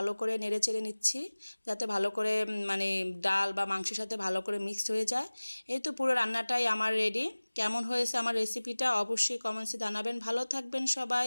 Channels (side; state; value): both; inverted; correlation -1.00